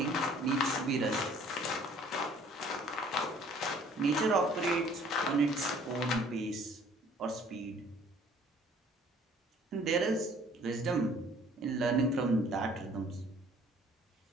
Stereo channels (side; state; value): both; normal; correlation 0.56